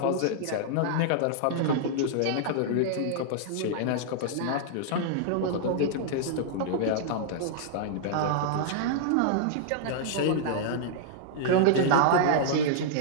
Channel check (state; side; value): different; both; correlation -0.01